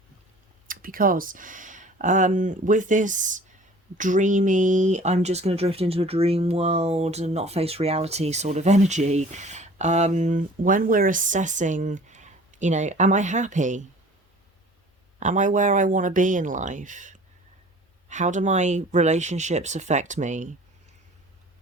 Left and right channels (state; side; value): normal; both; correlation 0.47